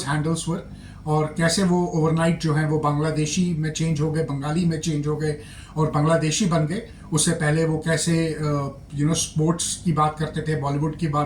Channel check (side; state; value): both; identical; correlation 1.00